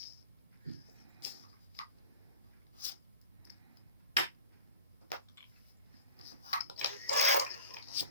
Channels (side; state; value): both; inverted; correlation -0.39